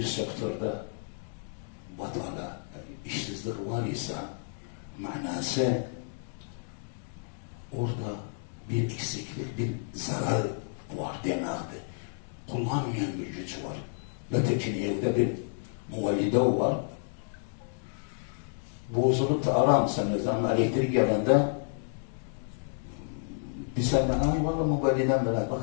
sektörde batala, işsizlik var ise manası orada bir eksiklik, bir zarar var demektir. Kullanmayan bir güç var. Ötekin evde bir muvallide var. Bozulup da aramsanız ama elektrik gelende bir sene ay valla muvalliden bile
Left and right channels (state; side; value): silent; right; digital silence